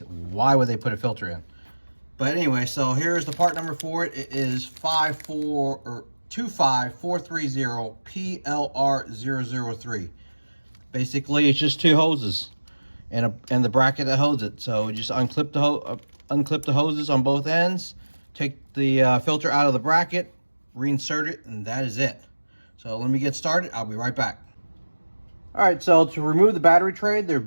would they put a filter in? But anyway, so here's the part number for it. It is 25430 PLR003. Basically, it's just two hoses and the bracket that holds it. So just unclip the hoses on both ends, take the filter out of the bracket, reinsert it, and that is it. So let me get started. I'll be right back. All right, so to remove the battery tray, there are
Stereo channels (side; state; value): both; inverted; correlation -1.00